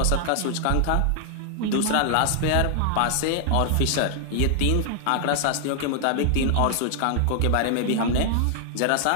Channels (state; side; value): different; both; correlation 0.00